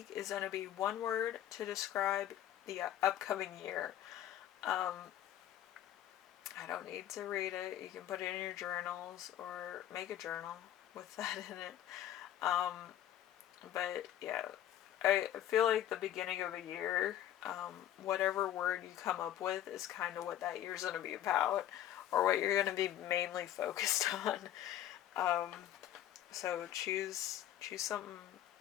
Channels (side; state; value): right; quieter; 11.9 dB